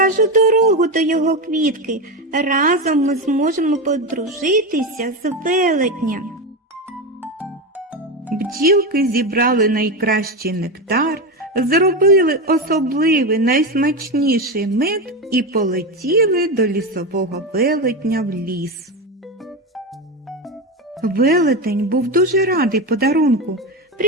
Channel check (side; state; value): both; normal; correlation 0.16